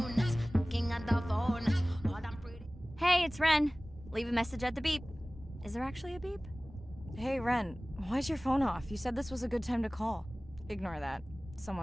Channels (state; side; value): normal; both; correlation 0.98